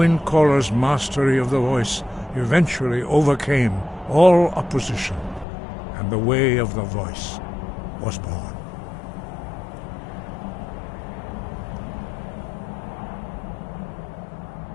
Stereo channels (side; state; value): right; drops out; at 5.5 s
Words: mastery of the voice eventually overcame all opposition, and the way of the voice was born.